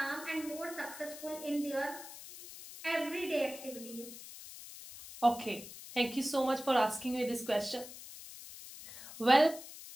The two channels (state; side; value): noise; left; hiss, 14 dB below the sound